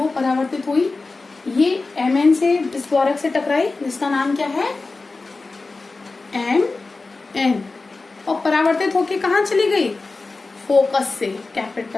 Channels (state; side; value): quieter; right; 3.7 dB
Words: परावर्तित हुई, ये Mn से इस द्वारक से टकराई जिसका नाम क्या है Mn, और परावर्तित होके कहाँ चली गई, फोकस से,